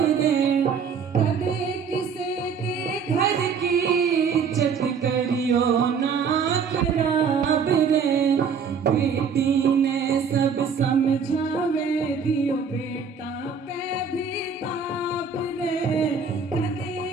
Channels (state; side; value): quieter; left; 5.9 dB